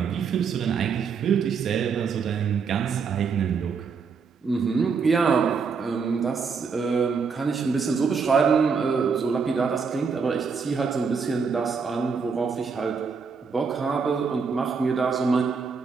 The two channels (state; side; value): quieter; left; 5.5 dB